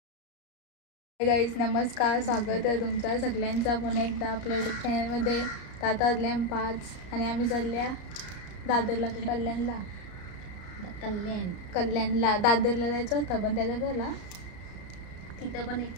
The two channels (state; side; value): late; right; 34 ms